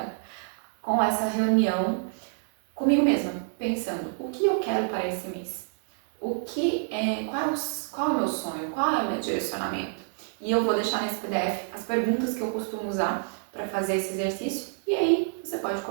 com essa reunião comigo mesma, pensando o que eu quero para esse mês, qual é o meu sonho, qual é o meu direcionamento. E eu vou deixar nesse PDF as perguntas que eu costumo usar para fazer esse exercício, e aí você pode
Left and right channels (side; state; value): left; silent; 59 dB below the other